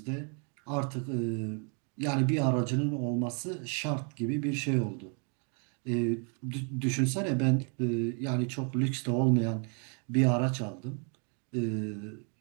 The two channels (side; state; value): left; quieter; 39.5 dB